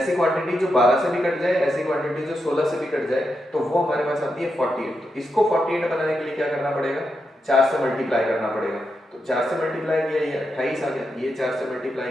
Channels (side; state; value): both; normal; correlation 0.85